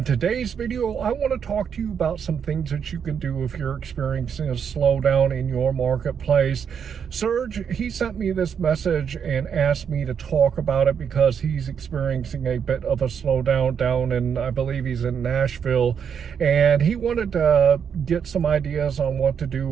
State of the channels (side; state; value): left; quieter; 7.4 dB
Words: today's video, I want to talk to you about some things that you can do if you're experiencing a slowdown in your marketplace. Serge, he sent me this message and asked me to talk about it because he's experiencing a bit of a slowdown down in, I believe he's in Nashville, and he wanted to get some ideas on what to